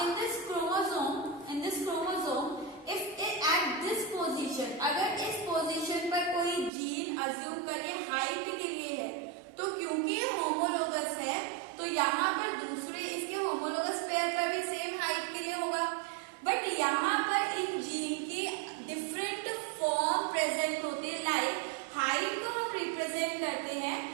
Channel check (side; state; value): left; drops out; at 6.7 s